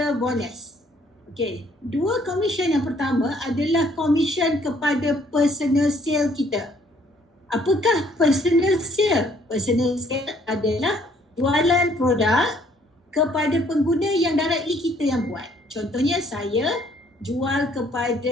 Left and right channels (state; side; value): normal; both; correlation 0.63